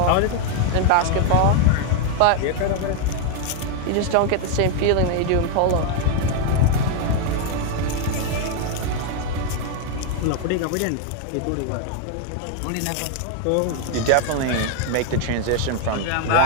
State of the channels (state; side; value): different; both; correlation 0.00